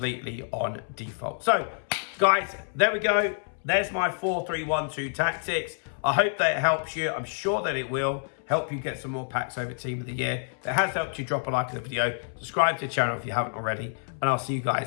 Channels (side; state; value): right; silent; 60 dB below the other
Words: on default. So, guys, there we go. There's my 4-3-1-2 tactics. I hope that it helps you. I'm sure that it will help you get some more packs over Team of the Year. If it has helped you, drop a like on the video. Subscribe to the channel if you haven't already. And I'll see you